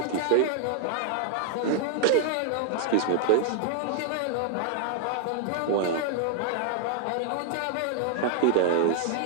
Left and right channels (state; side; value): different; both; correlation -0.01